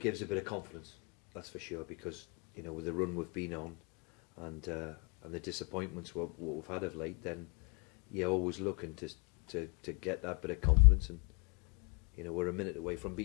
a bit of confidence, that's for sure, because, you know, with the run we've been on and the disappointments what we've had of late, then you're always looking to get that bit of confidence, and, you know, we're a minute away from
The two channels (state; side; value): quieter; right; 34.1 dB